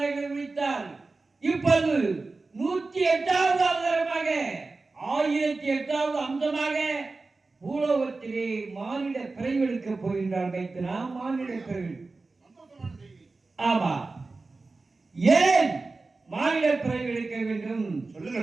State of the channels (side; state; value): left; quieter; 3.7 dB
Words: முடித்தார். இப்போது 108வது அவதாரமாக 1008வது அம்சமாக பூலோகத்திலே மானிட பிறவெடுக்க போகின்றார். வைத்தனா மானிட பிறவி. ஆமா, ஏன் மானிட பிறவி எடுக்க வேண்டும் சொல்லுங்க